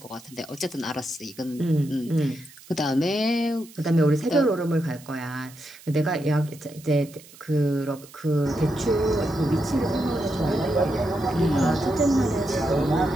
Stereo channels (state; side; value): noise; right; hiss, 22 dB below the sound